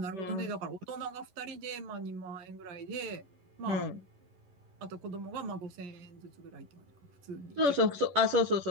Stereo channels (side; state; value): left; late; 11 ms